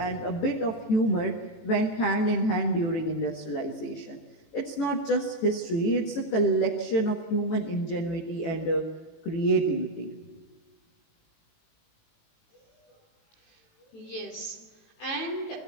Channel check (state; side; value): late; right; 18 ms